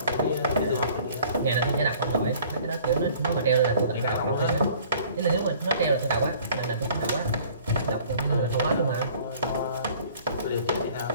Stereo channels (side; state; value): both; inverted; correlation -0.52